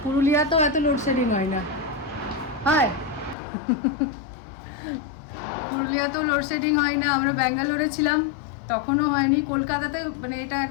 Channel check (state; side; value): drops out; right; at 3.4 s